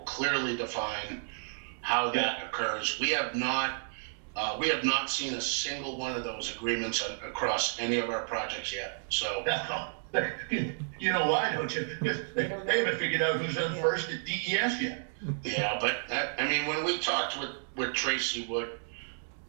clearly define how that occurs. We have not We have not seen a single one of those agreements across any of our projects yet, so. You know why, don't you? Because they haven't figured out who's on first at DES yet. Yeah, but I mean, when we talked with Tracy Wood,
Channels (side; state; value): left; silent; digital silence